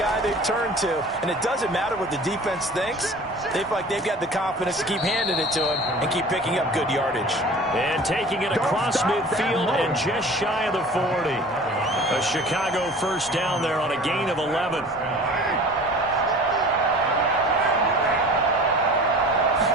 they've turned to. And it doesn't matter what the defense thinks. They feel like they've got the confidence to keep handing it to him and keep picking up good yardage. And taking it across midfield and just shy of the 40. A Chicago first down there on a gain of 11.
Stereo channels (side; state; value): both; normal; correlation 0.43